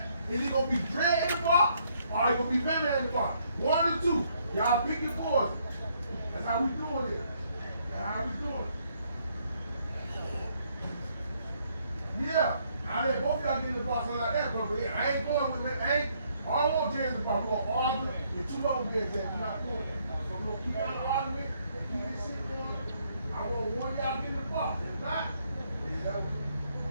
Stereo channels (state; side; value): inverted; both; correlation -0.70